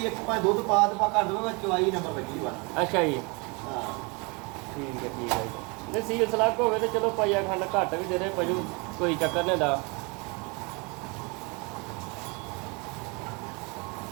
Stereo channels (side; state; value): left; quieter; 29.7 dB